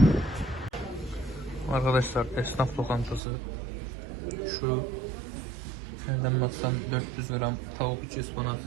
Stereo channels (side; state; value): left; drops out; at 3.2 s